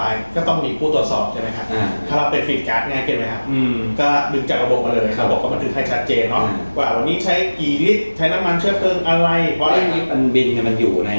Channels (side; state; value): both; inverted; correlation -1.00